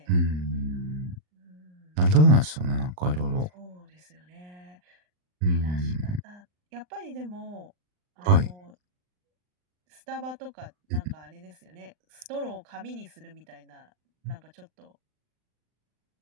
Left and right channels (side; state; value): left; late; 39 ms